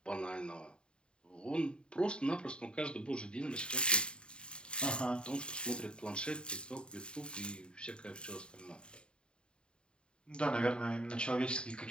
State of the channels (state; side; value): late; right; 0.051 ms